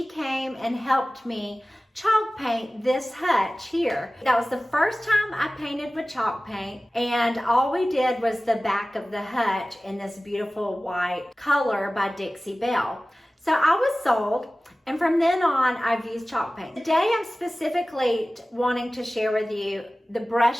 came and helped me chalk paint this hutch here. That was the first time I painted with chalk paint, and all we did was the back of the hutch in this beautiful white color by Dixie Belle. So I was sold, and from then on I've used chalk paint. Today I'm specifically wanting to share with you the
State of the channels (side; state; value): both; normal; correlation 0.97